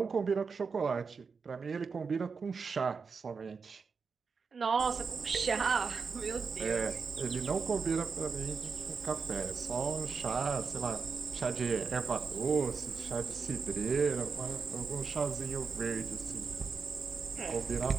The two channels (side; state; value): left; quieter; 5.2 dB